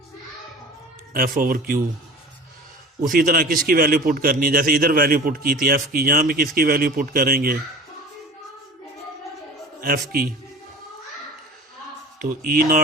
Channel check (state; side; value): normal; both; correlation 0.39